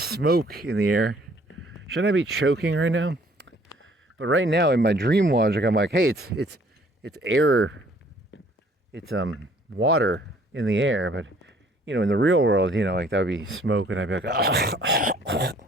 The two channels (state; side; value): normal; both; correlation 0.59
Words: in the air? Shouldn't I be choking right now? But right now in my dream logic, I'm like, hey, it's air, it's water in the air. But you know, in the real world, you know, like that would be smoke, and I'd be like,